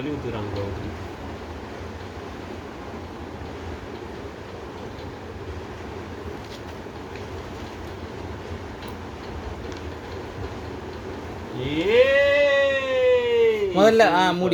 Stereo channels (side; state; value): both; identical; correlation 1.00